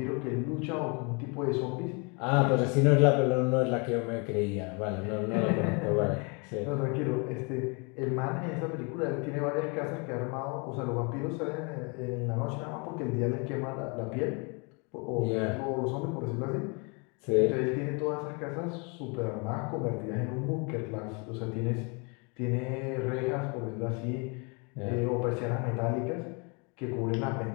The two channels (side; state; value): right; quieter; 32.7 dB